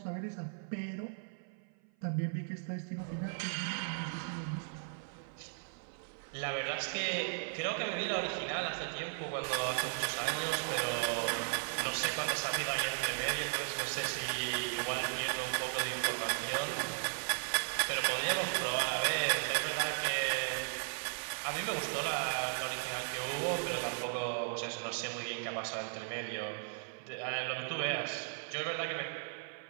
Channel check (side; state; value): left; silent; 53 dB below the other